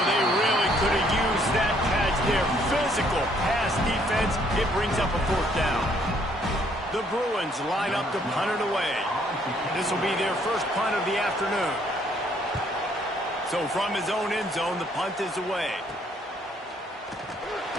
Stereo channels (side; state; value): both; normal; correlation 0.66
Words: they really could have used that catch there. Physical pass defense. It brings up a 4th down. The Bruins line up to punt it away. This will be their first punt of the afternoon. So from his own end zone, the punt is away.